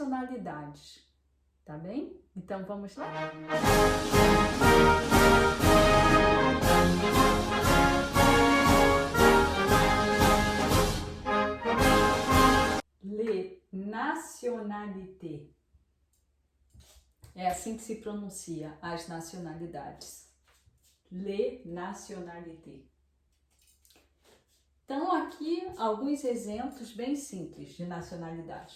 tá bem? Então vamos lá? Les nationalités. É assim que se pronuncia as nacionalidades. Les nationalités. Então, aqui alguns exemplos bem simples de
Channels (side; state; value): both; identical; correlation 1.00